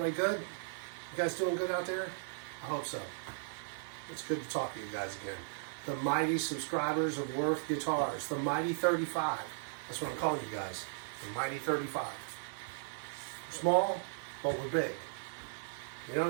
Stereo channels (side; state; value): left; silent; digital silence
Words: good? You guys doing good out there? I hope so. It's good to talk to you guys again. The mighty subscribers of Worth Guitars, the mighty 35. That's what I'm calling you guys, the mighty 35. We're small, but we're big. You know what